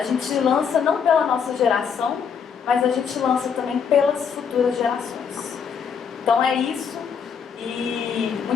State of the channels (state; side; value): quieter; right; 6.8 dB